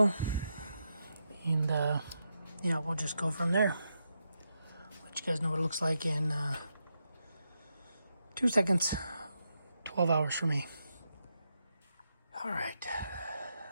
and we'll just go from there. you guys know what it looks like in 2 seconds. 12 hours for me. All right.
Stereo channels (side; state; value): both; inverted; correlation -0.84